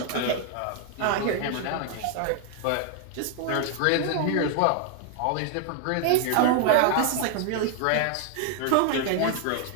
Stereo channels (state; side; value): different; both; correlation 0.00